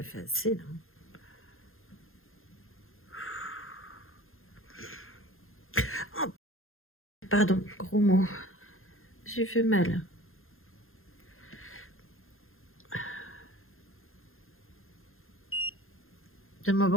fait assez, là. Oh, pardon, gros mot. J'ai fait mal. De mon bon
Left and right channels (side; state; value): right; late; 0.60 ms